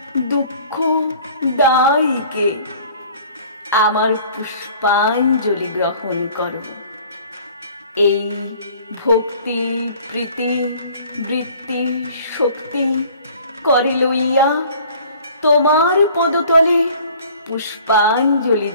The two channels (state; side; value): inverted; both; correlation -0.51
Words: দুঃখ দায়িকে আমার পুষ্পাঞ্জলি গ্রহণ করো। এই ভক্তি প্রীতি বৃত্তি শক্তি করে লইয়া তোমার পদতলে পুষ্পাঞ্জলি